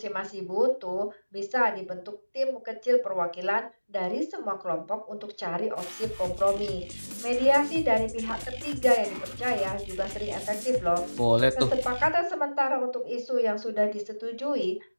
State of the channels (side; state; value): both; inverted; correlation -1.00